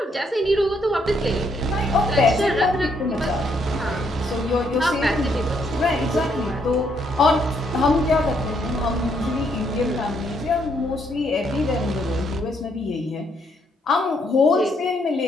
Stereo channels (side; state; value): both; normal; correlation 0.72